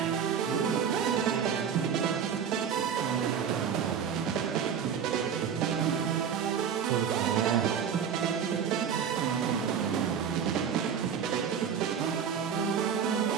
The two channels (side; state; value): left; quieter; 7.6 dB